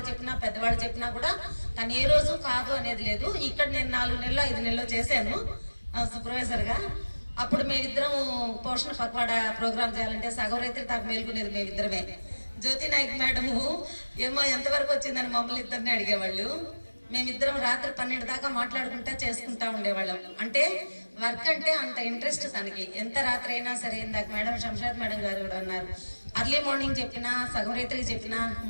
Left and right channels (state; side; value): inverted; both; correlation -1.00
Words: చెప్పినా పెద్దవాళ్ళు చెప్పినా కూడా తను ఏ రోజు కాదు అనేది లేదు. ఇక్కడ నేను 4 నెలలు 5 నెలలు చేశాను సూపర్వైజర్గా. అప్పుడు మేమిద్దరం పోషణ పక్వాడా ప్రోగ్రామ్ చేయాలంటే సగం రైతులు దాకా మేల్కొనేది మేమిద్దరమే. జ్యోతి నాయక్ మేడము ఏమో ఎంతవరకు వచ్చిందని మమ్మల్ని ఇద్దరిని అడిగేవాళ్ళు. మేమిద్దరం రాత్రి 12 దాకా మాట్లాడుకుంటా చేసుకుంటా ఉండేవాళ్ళం. అంటే వర్క్ అంటే అంత ఇంట్రెస్ట్ తనకి. ఎంత రాత్రి అయినా సరే, ఇందాక మేడం శంషాద్ మేడం గారు కూడా అన్నారు, అర్లీ మార్నింగ్ చెప్పినా సగం రైతులకి చెప్పినా